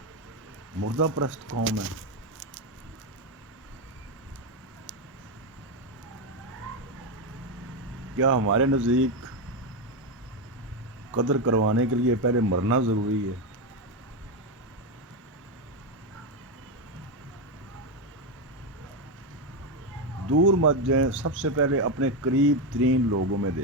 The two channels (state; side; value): normal; both; correlation 0.08